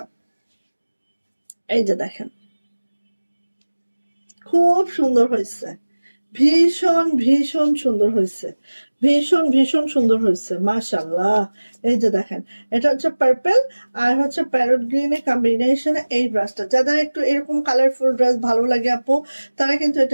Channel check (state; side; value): inverted; both; correlation -1.00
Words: এই যে দেখেন খুব সুন্দর হয়েছে, ভীষণ ভীষণ সুন্দর হয়েছে, ভীষণ সুন্দর হয়েছে মাশাআল্লাহ। এই যে দেখেন, এটা হচ্ছে পার্পল আর হচ্ছে প্যারট গ্রিনের কম্বিনেশনে এই ড্রেসটা। যাদের একটু এরকম কালারফুল ড্রেস ভালো লাগে আপু, তারা কিন্তু